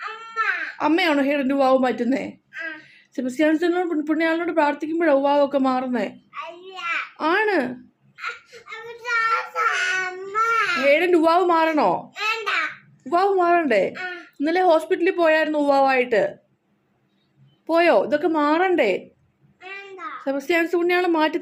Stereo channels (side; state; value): both; identical; correlation 1.00